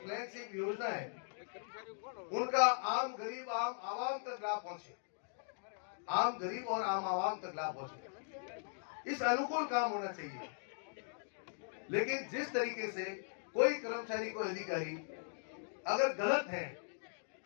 योजना है, कर्मचारी कौन हो? उनका आम गरीब आम आवाम तक लाभ पहुंचे, आम गरीब और आम आवाम तक लाभ पहुंचे, इस अनुकूल काम होना चाहिए। लेकिन जिस तरीके से कोई कर्मचारी, कोई अधिकारी अगर गलत है,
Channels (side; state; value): right; silent; digital silence